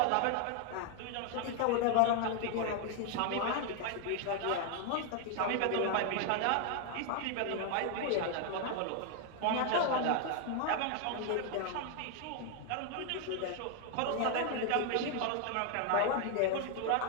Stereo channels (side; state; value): both; different; correlation 0.00